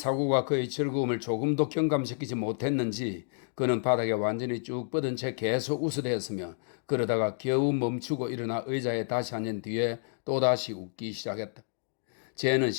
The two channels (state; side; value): silent; right; digital silence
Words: 그의 즐거움을 조금도 경감시키지 못했는지 그는 바닥에 완전히 쭉 뻗은 채 계속 웃어대었으며 그러다가 겨우 멈추고 일어나 의자에 다시 앉은 뒤에 또다시 웃기 시작했다. 쟤는